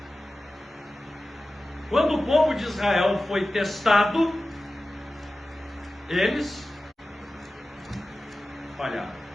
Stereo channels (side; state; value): both; normal; correlation 0.95